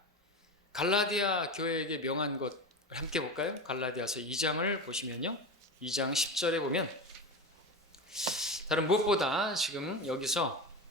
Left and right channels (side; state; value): both; normal; correlation 0.23